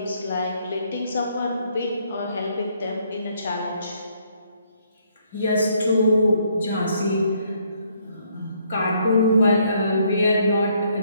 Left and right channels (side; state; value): both; inverted; correlation -0.69